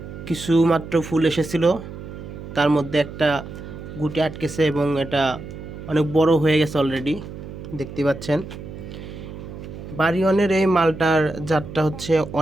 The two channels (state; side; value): noise; right; hum, 11 dB below the sound